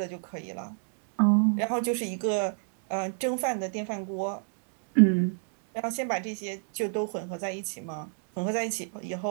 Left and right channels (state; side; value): silent; left; 58 dB below the other